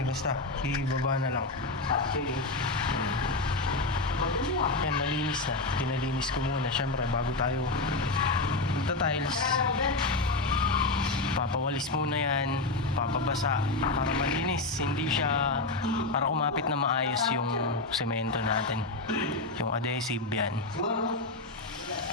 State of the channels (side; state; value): right; quieter; 3.2 dB